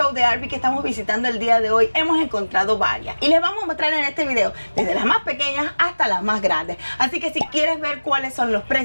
de RV que estamos visitando el día de hoy hemos encontrado varias. Y les vamos a mostrar en este video desde las más pequeñas hasta las más grandes. Así que si quieres ver cuáles son los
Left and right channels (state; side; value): inverted; both; correlation -1.00